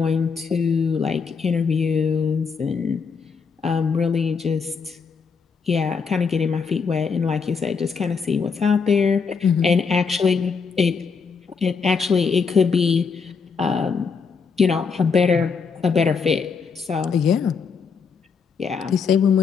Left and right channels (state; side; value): quieter; right; 5.5 dB